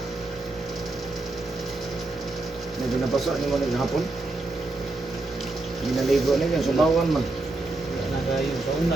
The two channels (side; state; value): left; quieter; 3.1 dB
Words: Medyo nabasa ni mo naghapon. Ginaligo na yan, subawan man. Nagayon sa